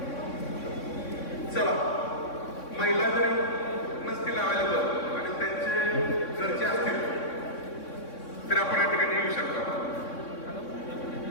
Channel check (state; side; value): late; right; 3.6 ms